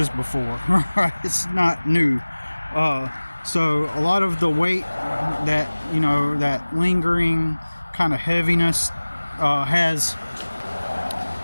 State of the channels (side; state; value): both; inverted; correlation -1.00